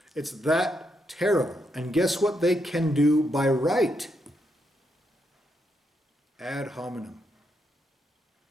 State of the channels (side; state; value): both; normal; correlation 0.80